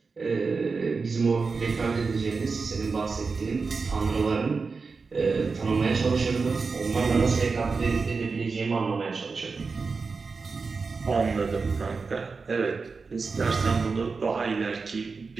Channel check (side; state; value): left; quieter; 4.6 dB